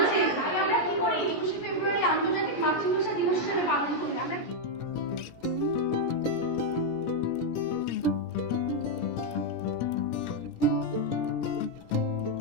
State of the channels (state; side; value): late; right; 17 ms